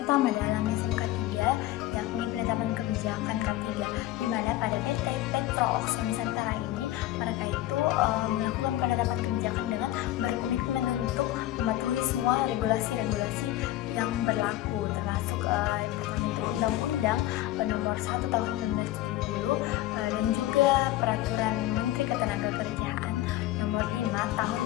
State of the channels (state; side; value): quieter; right; 15.1 dB